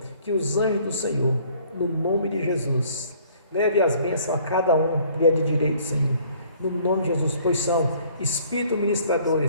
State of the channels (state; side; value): inverted; both; correlation -0.57